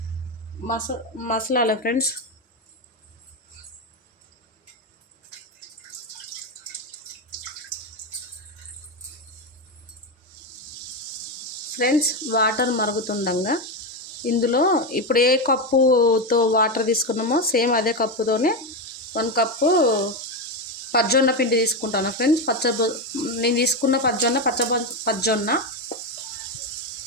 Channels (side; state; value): both; normal; correlation 0.11